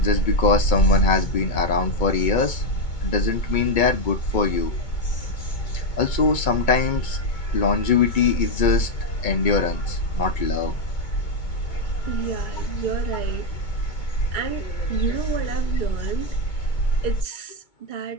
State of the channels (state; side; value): late; right; 2.2 ms